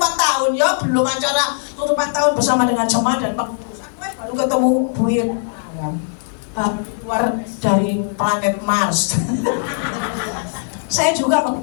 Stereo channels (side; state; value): right; silent; 61 dB below the other